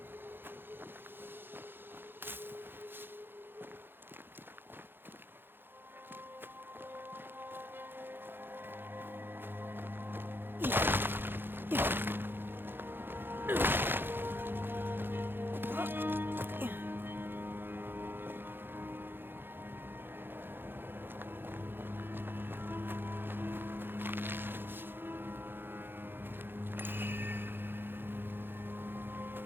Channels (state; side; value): late; left; 0.10 ms